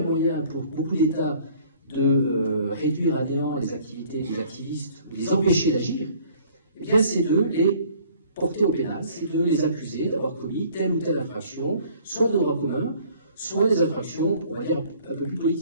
moyen pour beaucoup d'États de réduire à néant les activités des activistes, de les empêcher d'agir, eh bien c'est de les porter au pénal, c'est de les accuser d'avoir commis telle ou telle infraction, soit de droit commun, soit des infractions, on va dire, un peu plus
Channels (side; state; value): both; inverted; correlation -0.55